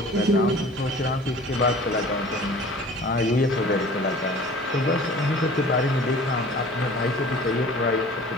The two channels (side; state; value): both; normal; correlation 0.45